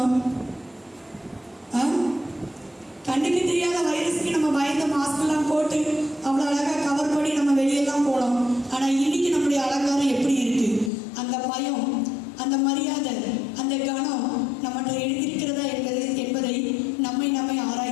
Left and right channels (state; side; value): drops out; right; at 10.9 s